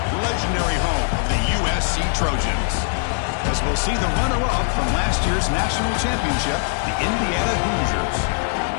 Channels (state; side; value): silent; right; 65 dB below the other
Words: legendary home of the USC Trojans. As we'll see the runner-up from last year's national championship, the Indiana Hoosiers,